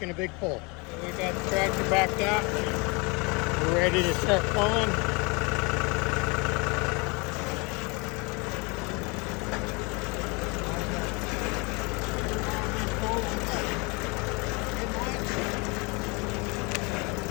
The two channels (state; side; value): quieter; right; 29.0 dB